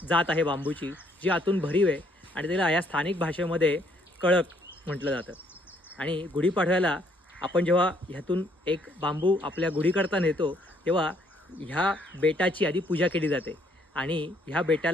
जात आहे बांबूची, जी आतून भरीव आहे आणि त्याला या स्थानिक भाषेमध्ये कळक म्हटलं जातं. आणि गुढीपाडव्याला आपण जेव्हा ह्यातून एक बांबू आपल्या गुढीकरता नेतो तेव्हा ह्या बेटाची आधी पूजा केली जाते आणि ह्या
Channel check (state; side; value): normal; both; correlation 0.67